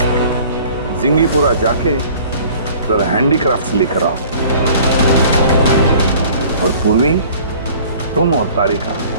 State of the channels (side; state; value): both; inverted; correlation -0.50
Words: जिंगीपुरा जाके जरा हैंडीक्राफ्ट लेकर आओ, और पूर्वी, तुम और तारिका